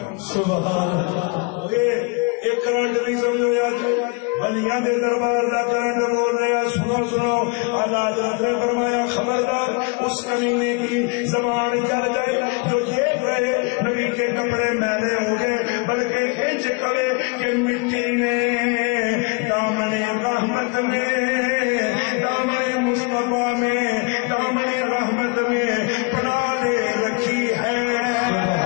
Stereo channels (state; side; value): quieter; right; 29.9 dB